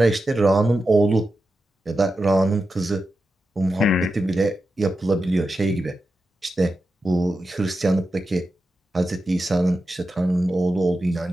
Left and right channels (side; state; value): both; normal; correlation 0.90